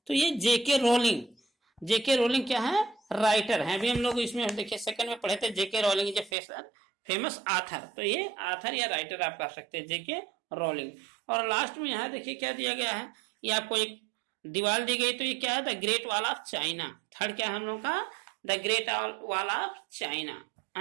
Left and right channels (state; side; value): drops out; left; at 6.3 s